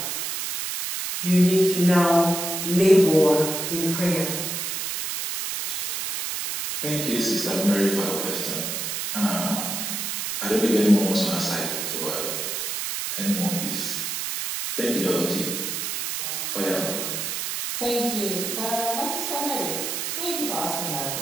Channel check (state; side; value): noise; right; hiss, 3 dB below the sound